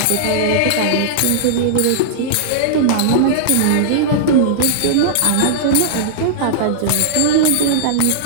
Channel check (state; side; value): different; both; correlation -0.02